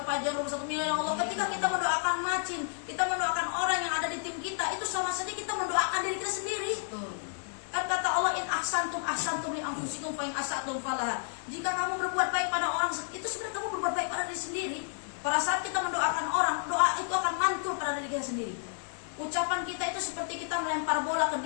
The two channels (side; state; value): right; silent; 57 dB below the other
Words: pajar 1 miliar, ya Allah. Ketika kita mendoakan macin, kita mendoakan orang yang ada di tim kita, itu sama saja kita mendoakan diri kita sendiri. Kan kata Allah, in ahsantum li anfusikum fa in asatum falaha. Jika kamu berbuat baik pada orang, itu sebenarnya kamu berbuat baik pada diri sendiri. Pada saat kita mendoakan orang, doa itu akan mantul pada diri kita sendiri. Ucapan kita itu seperti kita melempar bola ke